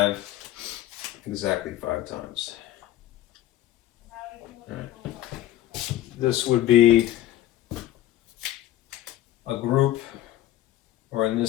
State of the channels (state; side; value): quieter; right; 13.7 dB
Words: exactly 5 times. Right. This would be a group, or in